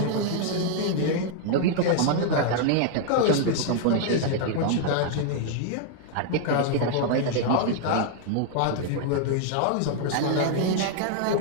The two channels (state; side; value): different; both; correlation 0.00